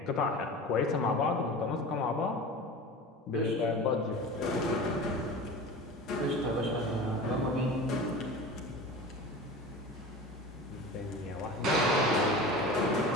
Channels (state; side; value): normal; both; correlation 0.34